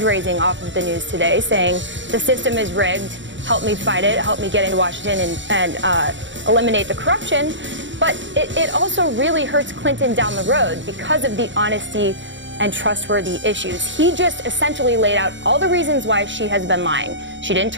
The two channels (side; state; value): left; late; 0.54 ms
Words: off of the news today, saying the system is rigged, help me fight it, help me get into Washington and eliminate the corruption. But it also really hurts Clinton down the road because of the honesty and trustworthy issues. He just essentially laid out all the reasons why she has been lying. She didn't